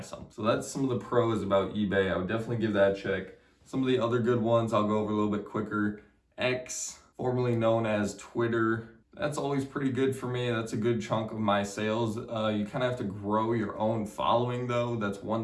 So that's some of the pros about eBay. I would definitely give that a check. Some of the other good ones I'll go over a little bit quicker. X, formerly known as Twitter. That's always pretty good for me. That's a good chunk of my sales. You kind of have to grow your own following though. That's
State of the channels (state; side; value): identical; both; correlation 1.00